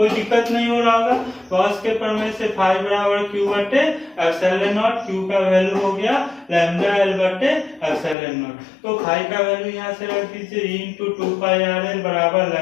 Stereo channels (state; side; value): drops out; right; at 8.2 s